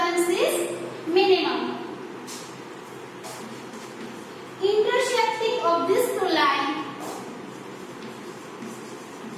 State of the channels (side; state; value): both; identical; correlation 1.00